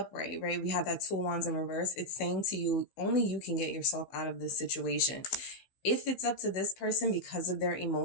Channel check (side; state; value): right; late; 15 ms